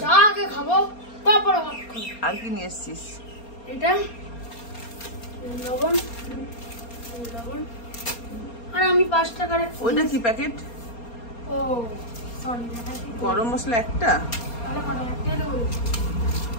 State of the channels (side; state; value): right; late; 4.3 ms